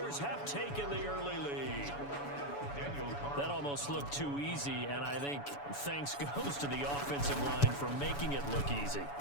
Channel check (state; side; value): late; right; 7.0 ms